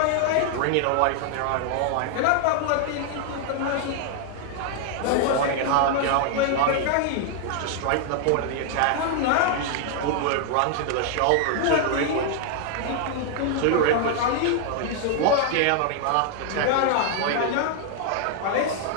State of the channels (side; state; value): both; different; correlation 0.00